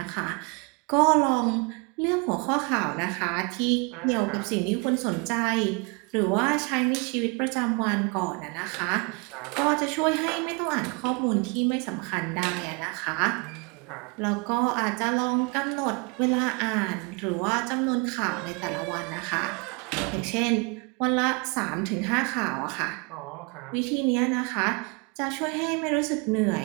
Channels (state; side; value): quieter; left; 31.6 dB